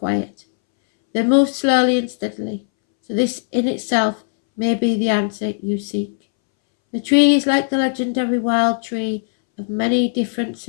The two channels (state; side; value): silent; right; 65 dB below the other